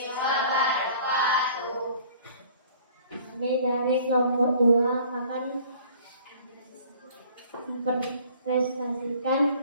Kami dari kelompok 2 akan mempresentasikan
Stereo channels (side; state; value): both; inverted; correlation -0.52